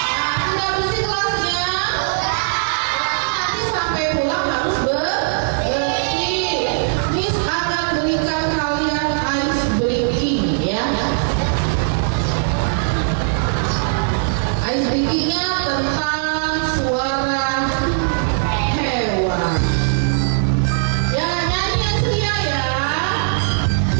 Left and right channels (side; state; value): left; silent; digital silence